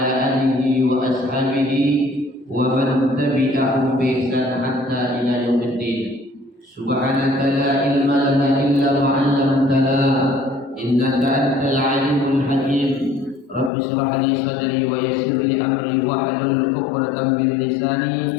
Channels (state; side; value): drops out; right; at 13.7 s